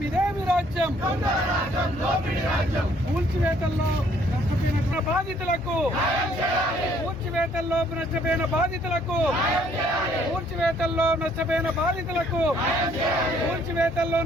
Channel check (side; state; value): both; normal; correlation 0.64